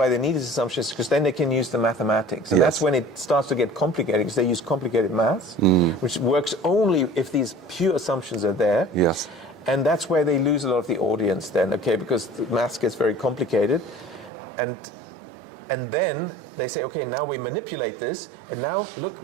they need these assumptions is because then they can use the mathematics. And that's when it starts to get complicated, because they use complicated maths, which works only if these pure assumptions are there. Yes. And that's where they lose a lot of the audience then, because the maths gets very complicated. And then they say, okay, now we manipulate this, and now, look,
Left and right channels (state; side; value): drops out; left; at 14.3 s